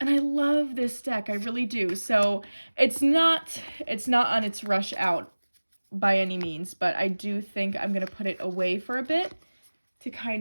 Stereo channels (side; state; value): both; inverted; correlation -1.00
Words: I love this deck, I really do. So it's not on its rush out by any means, but I do think I'm gonna put it away for a bit to